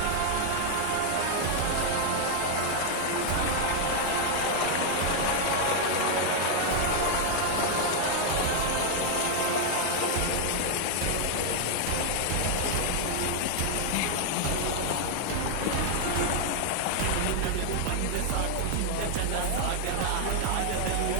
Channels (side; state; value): both; different; correlation 0.00